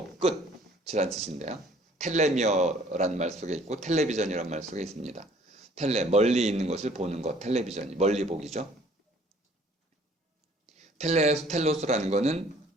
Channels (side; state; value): both; normal; correlation 0.56